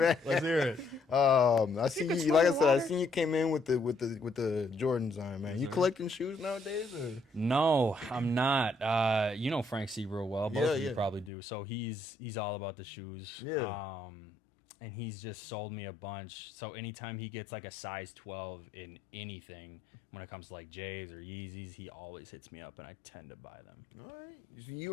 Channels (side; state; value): right; drops out; at 11.3 s